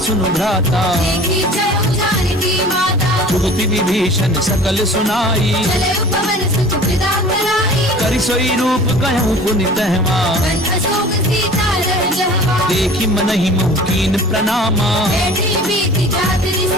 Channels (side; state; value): both; normal; correlation 0.43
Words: भ्राता। जुगति विभीषण सकल सुनाई। करि सोई रूप कहूँ पुनि तहवा। देखी मनहि मुकीन प्रणामा।